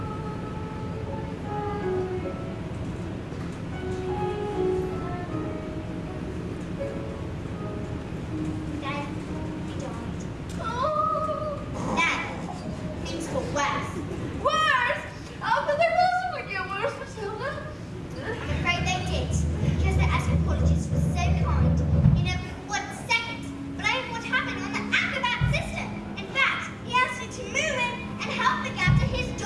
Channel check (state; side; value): identical; both; correlation 1.00